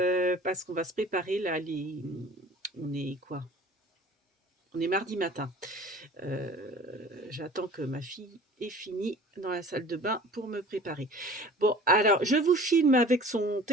parce qu'on va se préparer là. On est quoi? On est mardi matin. J'attends que ma fille ait fini dans la salle de bain pour me préparer. Bon, alors, je vous filme avec son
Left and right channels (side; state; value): both; normal; correlation 0.45